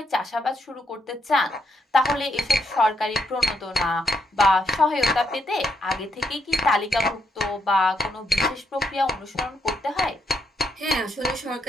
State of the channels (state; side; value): normal; both; correlation 0.77